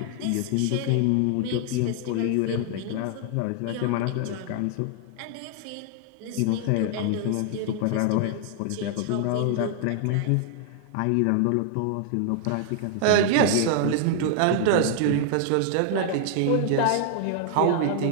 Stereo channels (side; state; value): both; different; correlation 0.00